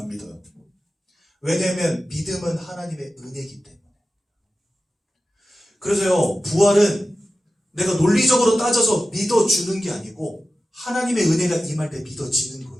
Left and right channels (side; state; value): both; normal; correlation 0.93